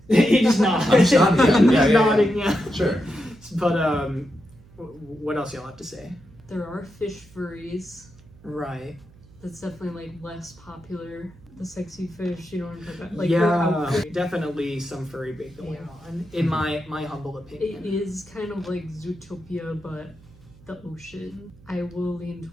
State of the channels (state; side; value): noise; right; hum, 24 dB below the sound